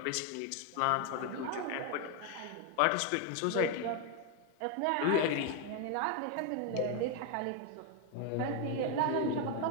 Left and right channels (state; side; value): different; both; correlation 0.01